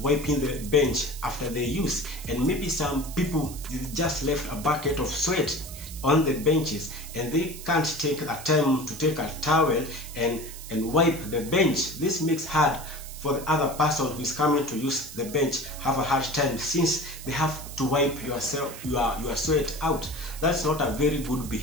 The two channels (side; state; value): right; noise; hiss, 13 dB below the sound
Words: the bench after they use, and maybe some people just left a bucket of sweat on the benches and they can't take a time to take a towel and wipe the bench. This makes hard for the other person who is coming to use the bench have a hard time, since they have to wipe your sweat out. That's not a very good